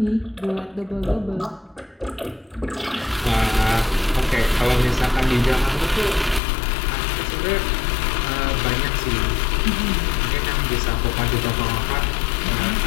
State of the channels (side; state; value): right; drops out; at 6.4 s